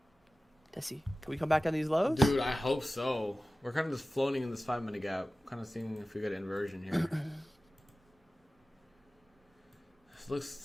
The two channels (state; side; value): normal; both; correlation 0.96